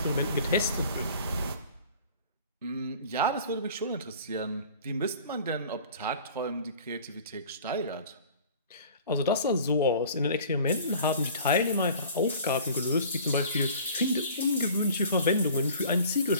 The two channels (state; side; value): inverted; both; correlation -0.46